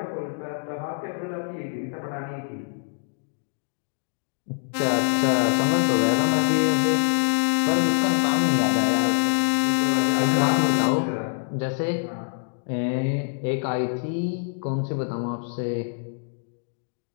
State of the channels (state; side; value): silent; right; digital silence